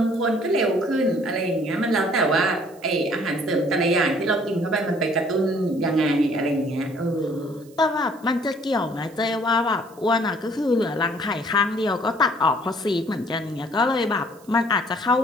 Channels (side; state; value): right; noise; hiss, 27 dB below the sound